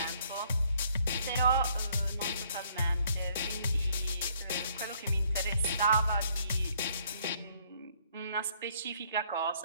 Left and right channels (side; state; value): both; inverted; correlation -0.65